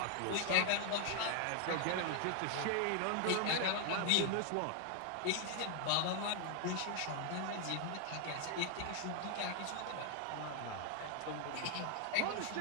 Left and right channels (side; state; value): both; different; correlation 0.00